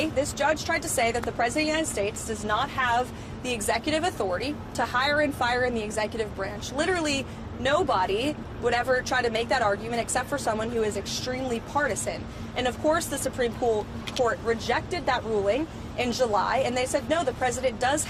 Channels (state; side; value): identical; both; correlation 1.00